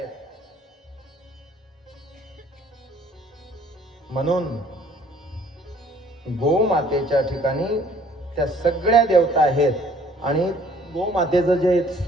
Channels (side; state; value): both; normal; correlation 0.57